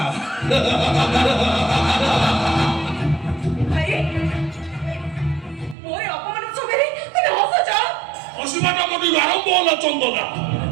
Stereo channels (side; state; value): left; drops out; at 5.8 s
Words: ভাই মোরে অপমান সবেরে তুমি হসছ অসীমাটা মোটি আরম্ভ হলো চন্দনা